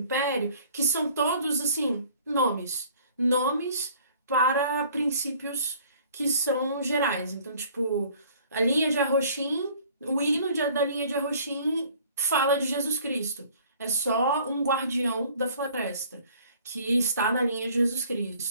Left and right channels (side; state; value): both; inverted; correlation -0.54